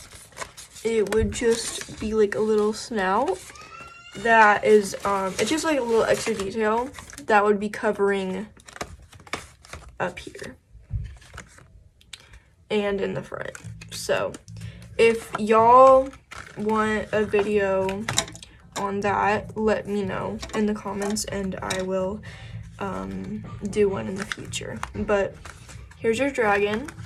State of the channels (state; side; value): identical; both; correlation 1.00